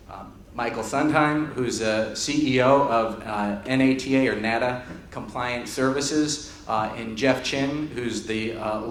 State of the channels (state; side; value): identical; both; correlation 1.00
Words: Michael Sundheim, who's the CEO of NATA or NATA Compliant Services, and Jeff Chin, who's the